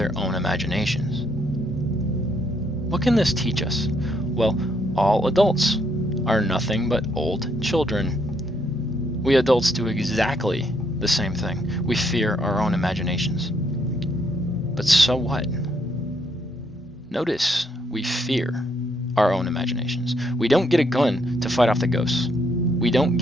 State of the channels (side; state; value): both; normal; correlation 0.73